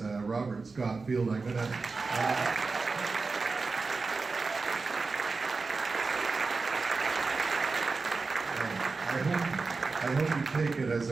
Robert Scott Field, I'm gonna... I hope you take it as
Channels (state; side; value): quieter; left; 4.1 dB